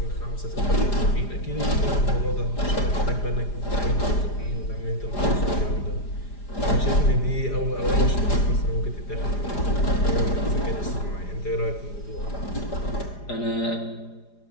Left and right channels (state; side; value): late; right; 4.9 ms